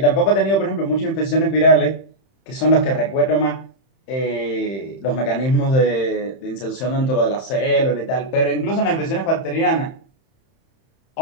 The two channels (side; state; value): right; late; 31 ms